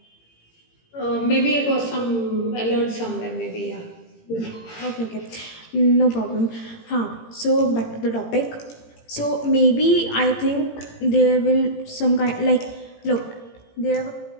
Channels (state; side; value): late; right; 18 ms